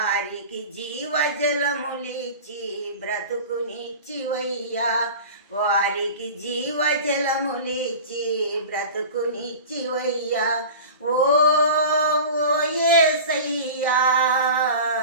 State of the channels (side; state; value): both; inverted; correlation -0.35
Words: జీవజలములిచ్చి బ్రతుకునిచ్చివయ్యా, వారికి జీవజలములిచ్చి బ్రతుకునిచ్చివయ్యా. ఓ యేసయ్యా